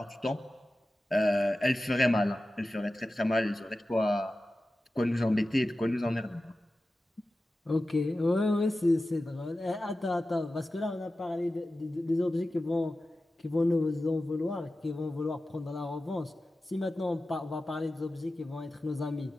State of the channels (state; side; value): normal; both; correlation 0.94